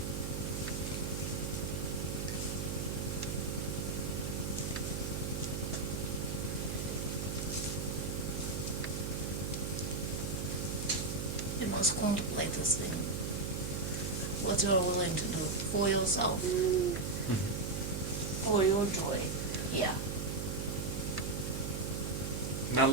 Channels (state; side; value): noise; right; hum, 2 dB below the sound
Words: You must contemplate this thing. What you're willing to do for yourself, for your joy. Yeah. Now,